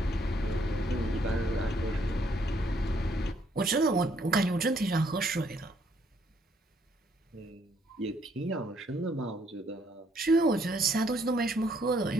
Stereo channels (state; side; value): normal; both; correlation 0.68